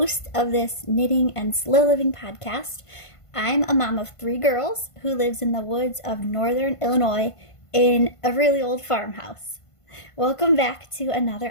of this knitting and slow living podcast. I'm a mom of 3 girls who lives in the woods of northern Illinois in a really old farmhouse. Welcome back to another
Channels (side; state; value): right; late; 1.5 ms